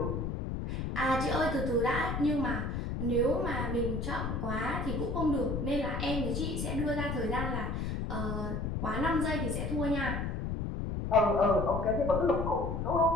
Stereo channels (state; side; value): noise; left; rumble, 2 dB below the sound